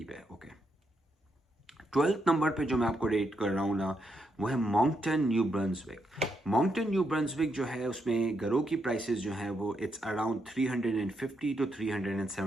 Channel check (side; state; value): both; normal; correlation 0.80